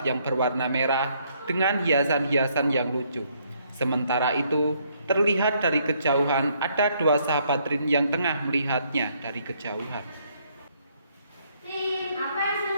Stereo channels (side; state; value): both; inverted; correlation -0.69